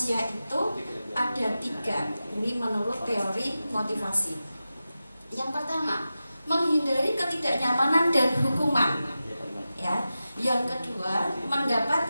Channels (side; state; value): both; inverted; correlation -0.93